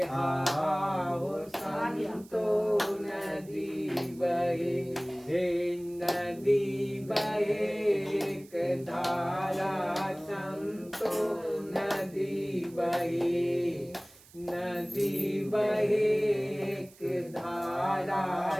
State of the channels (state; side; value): noise; right; hiss, 24 dB below the sound